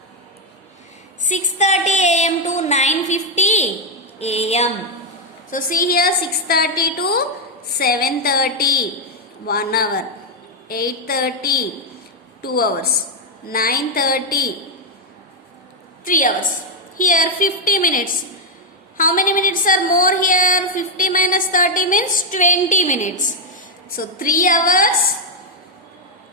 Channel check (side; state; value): both; normal; correlation 0.02